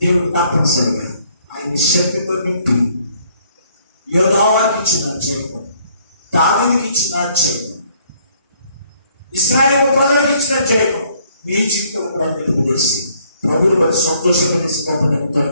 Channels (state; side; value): inverted; both; correlation -0.65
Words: దేవుడు తప్పనిసరిగా ఆయన శక్తితో నింపి యోధావాకి ఇచ్చిన జయము, దావీదుకి ఇచ్చిన జయము, ఇశ్రాయేలు ప్రజలకు ఇచ్చిన జయము మీ జీవితంలో కూడా నిలుపుదేసి ప్రభువుని బట్టి సంతోషపడేసి గొప్ప